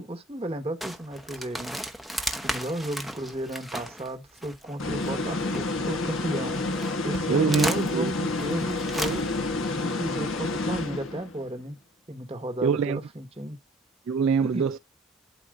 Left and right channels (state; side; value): normal; both; correlation 0.53